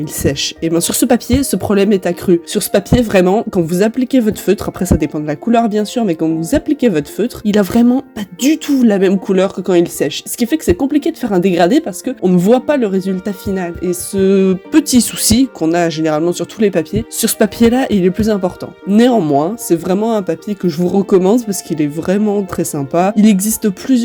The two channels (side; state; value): both; identical; correlation 1.00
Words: sèchent. Et bien sur ce papier, ce problème est accru. Sur ce papier, vraiment, quand vous appliquez votre feutre, après ça dépend de la couleur bien sûr, mais quand vous appliquez votre feutre, il a vraiment pas du tout la même couleur que quand il sèche. Ce qui fait que c'est compliqué de faire un dégradé parce que on ne voit pas le résultat final. Et ce petit souci qu'on a généralement sur tous les papiers, sur ce papier-là, il est plus important. Néanmoins, c'est vraiment un papier que je vous recommande parce qu'il est vraiment très sympa. Il existe